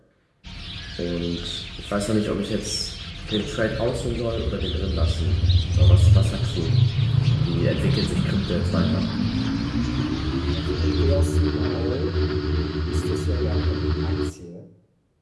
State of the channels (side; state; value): both; identical; correlation 1.00